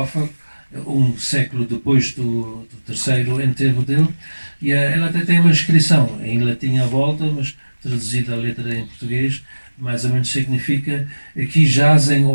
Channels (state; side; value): inverted; both; correlation -1.00